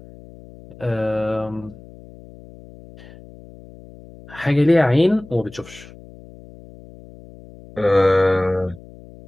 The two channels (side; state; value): left; noise; hum, 20 dB below the sound